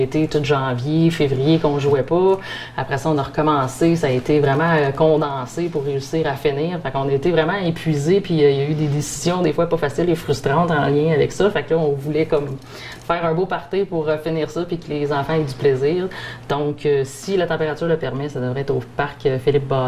tout janvier, février qu'on jouait pas. Après ça, on a recommencé. Ça a été vraiment condensé pour réussir à finir. Fait qu'on a été vraiment épuisés. Puis il y a eu des décisions des fois pas faciles et frustrantes en lien avec ça. Fait que là, on voulait comme faire un beau party pour finir ça puis que les enfants aient du plaisir. Donc, si la température le permet, ça devrait être au parc Philippe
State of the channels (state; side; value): identical; both; correlation 1.00